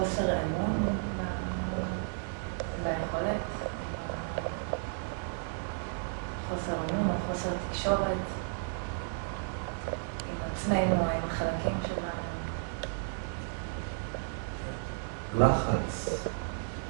אמון ביכולת, חוסר אמון או חוסר תקשורת עם עצמנו או עם החלקים שלנו. לחץ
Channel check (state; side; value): silent; left; digital silence